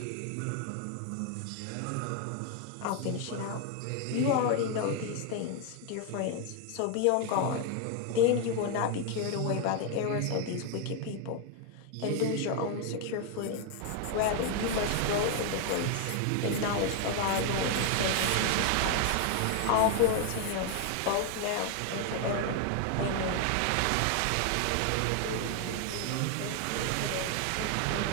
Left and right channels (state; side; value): different; both; correlation 0.01